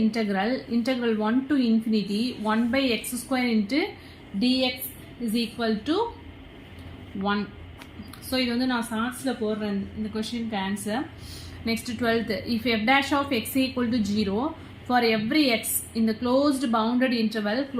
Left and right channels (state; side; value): identical; both; correlation 1.00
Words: integral 1 to infinity 1 by x square into dx is equal to 1. So இது வந்து நான் ஷார்ட்ஸில் போடுறேன் இந்த கொஷினுக்கு answer. Next 12th, if f dash of x equal to 0 for every x in the closed bounded